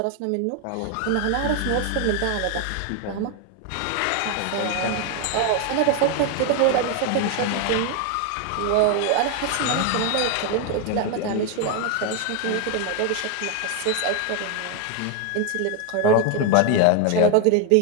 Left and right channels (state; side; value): different; both; correlation 0.01